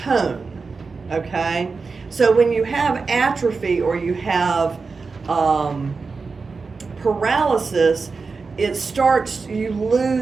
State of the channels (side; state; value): left; quieter; 4.5 dB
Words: okay? So when you have atrophy or you have paralysis, you